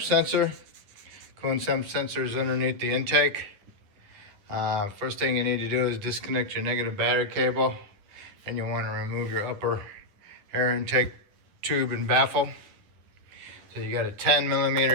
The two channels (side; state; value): left; late; 10 ms